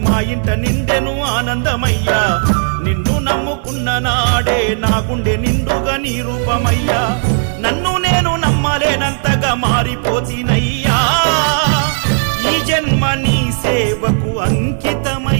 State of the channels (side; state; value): left; silent; digital silence